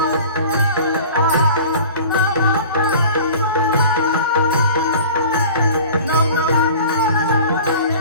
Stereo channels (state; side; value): inverted; both; correlation -0.42